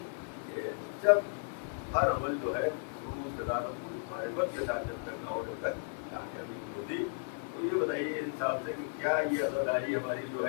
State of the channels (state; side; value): silent; right; digital silence